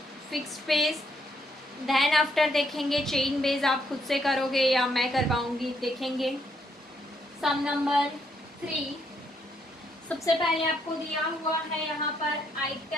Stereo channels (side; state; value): both; normal; correlation 0.74